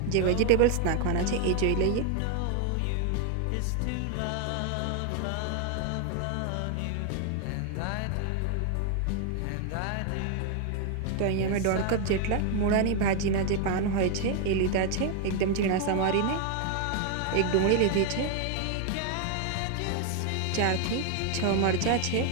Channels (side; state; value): both; different; correlation 0.00